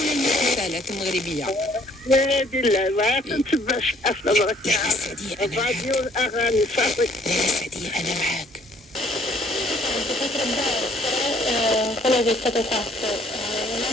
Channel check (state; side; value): normal; both; correlation 0.61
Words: ولا المسلسلات المغربية. نادي لا ما كنتبعش الافلام لا السعدية أنا معاك. الراديو الاغاني صافي. لا السعدية أنا معاك. quello che è stato fatto